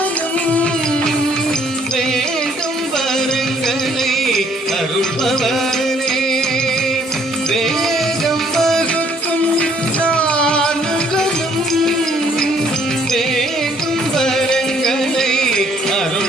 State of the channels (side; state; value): both; normal; correlation 0.63